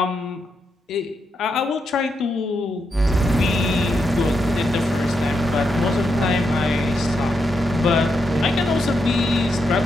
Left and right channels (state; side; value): normal; both; correlation 0.83